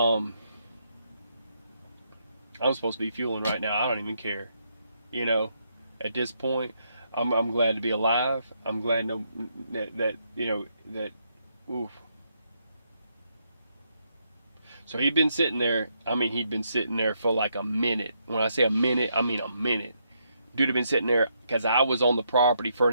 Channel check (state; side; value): inverted; both; correlation -0.77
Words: supposed to be fueling right now. I don't even care. At this point, I'm glad to be alive. I'm glad that oof. So he'd been sitting there. He'd been sitting there for like a minute. When I say a minute, I mean a minute. Dude had been sitting there because I was on the property for